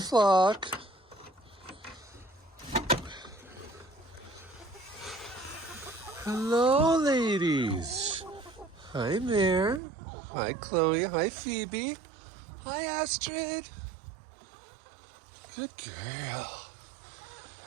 Hello, ladies. Hi, Mare. Hi, Chloe. Hi, Phoebe. Hi, Astrid. Good girl.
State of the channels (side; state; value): left; drops out; at 9.8 s